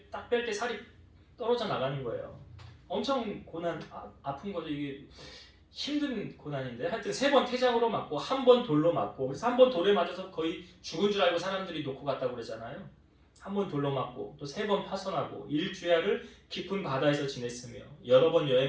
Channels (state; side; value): identical; both; correlation 1.00